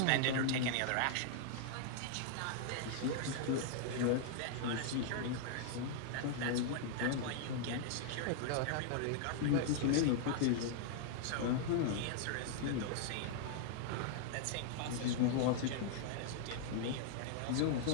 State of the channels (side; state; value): both; different; correlation 0.00